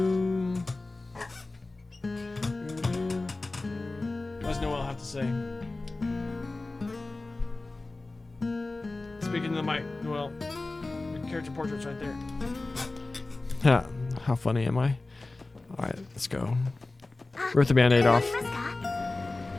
What does Noel have to say? Speaking to the mic, Noel. Your character portrait's right there. Yeah, how funny am I? Alright, let's go. Rip the band-aid off.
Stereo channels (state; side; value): quieter; right; 3.2 dB